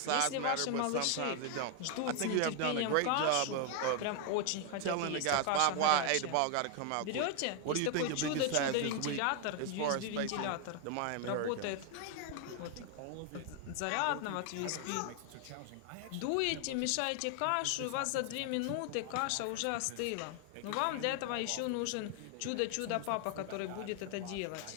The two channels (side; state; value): both; different; correlation 0.00